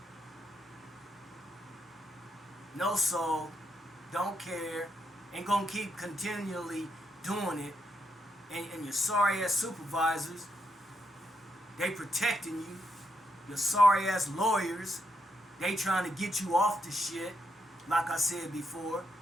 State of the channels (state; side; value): normal; both; correlation 0.80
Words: No soul, don't care, and gonna keep continually doing it. And your sorry ass supervisors, they protecting you. Your sorry ass lawyers, they trying to get you off the shit, like I said before.